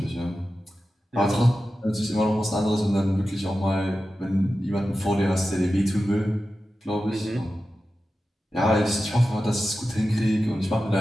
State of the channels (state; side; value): normal; both; correlation 0.93